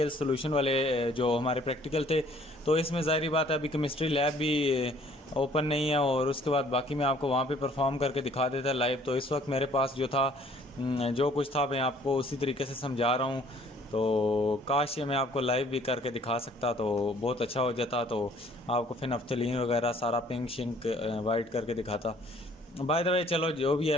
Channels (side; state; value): both; normal; correlation 0.58